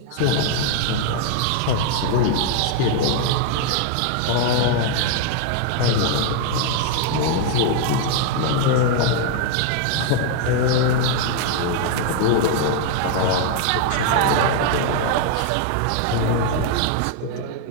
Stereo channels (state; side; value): different; both; correlation 0.00